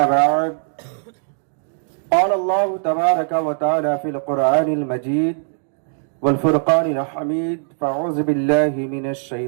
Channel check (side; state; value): left; silent; digital silence